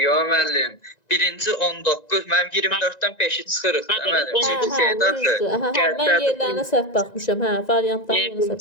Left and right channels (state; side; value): late; right; 1.9 ms